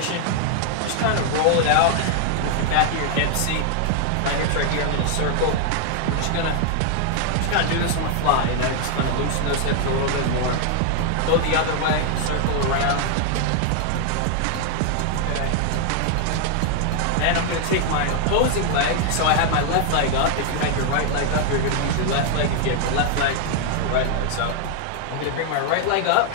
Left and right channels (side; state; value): both; different; correlation 0.00